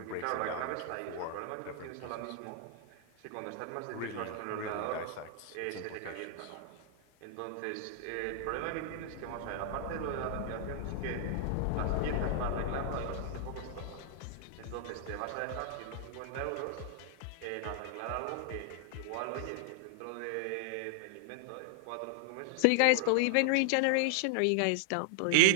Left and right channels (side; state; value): both; different; correlation -0.01